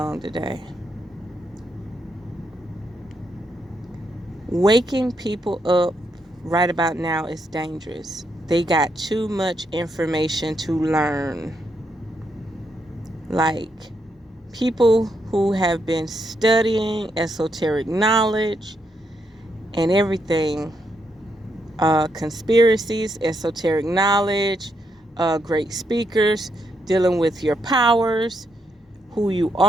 today? Waking people up right about now is dangerous. They got too much information to learn. Like people who have been studying esoteric knowledge and everything, conspiracies, esoteric knowledge, great speakers, dealing with your powers, who you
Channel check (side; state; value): both; normal; correlation 0.79